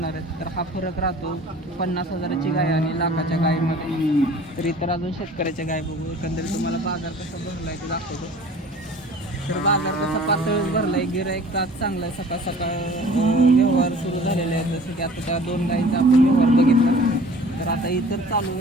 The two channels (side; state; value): both; normal; correlation 0.47